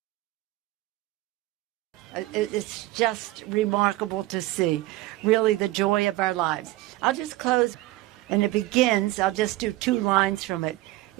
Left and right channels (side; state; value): left; quieter; 17.9 dB